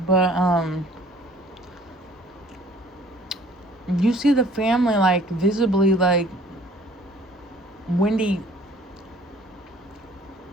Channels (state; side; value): normal; both; correlation 0.55